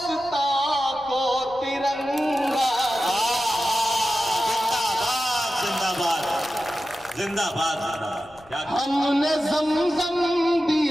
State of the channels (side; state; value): left; noise; rumble, 26 dB below the sound